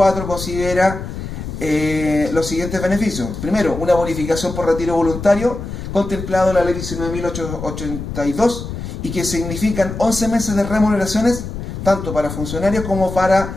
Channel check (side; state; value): left; noise; rumble, 7 dB below the sound